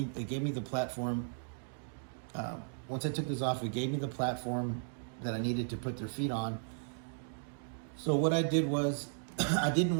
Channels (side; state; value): left; silent; digital silence